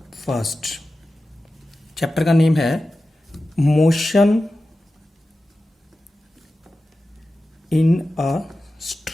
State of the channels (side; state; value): both; normal; correlation 0.94